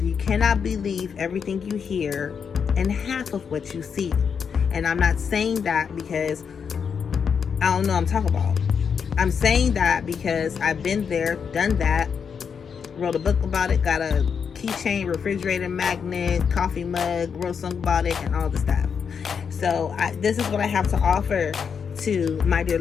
you cannot believe everything you hear and half of what you see. And I'm not saying that because I don't know what I'm talking about. I'm saying that because I've been there, done that, wrote a book about it, got a keychain, refrigerator magnet, coffee mug, wrote a song about it, and all the stuff. So this is what I have to offer to my dear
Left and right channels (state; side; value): quieter; right; 6.6 dB